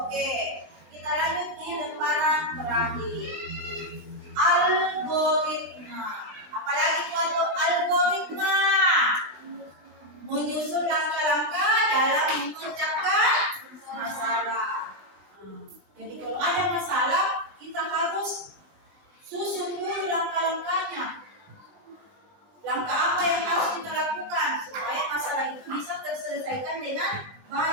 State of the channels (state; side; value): late; left; 20 ms